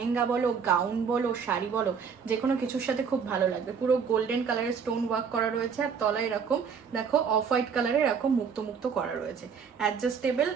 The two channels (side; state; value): left; quieter; 6.4 dB